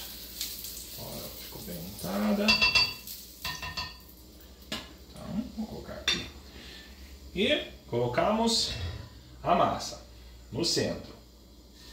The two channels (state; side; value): identical; both; correlation 1.00